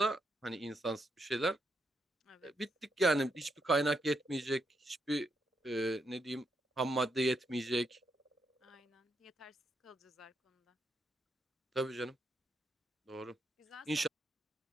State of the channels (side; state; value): both; normal; correlation 0.80